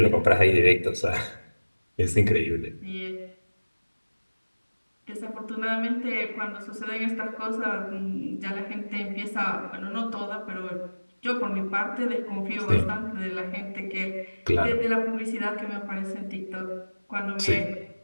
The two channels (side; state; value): both; inverted; correlation -1.00